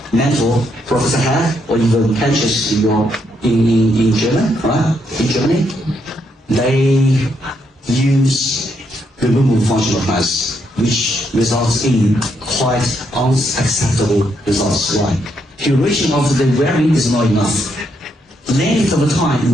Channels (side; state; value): both; normal; correlation 0.77